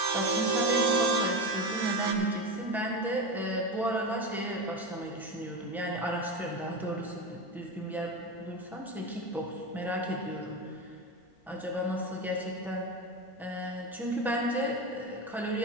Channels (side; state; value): both; normal; correlation 0.20